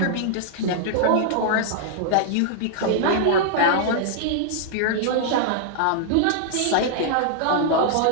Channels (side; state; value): both; different; correlation -0.01